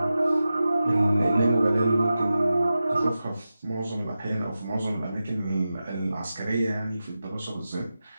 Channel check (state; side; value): inverted; both; correlation -0.93